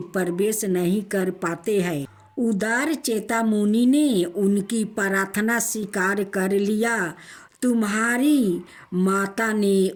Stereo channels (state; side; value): identical; both; correlation 1.00